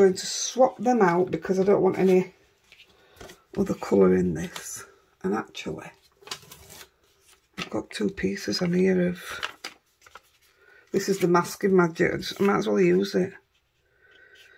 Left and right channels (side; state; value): both; identical; correlation 1.00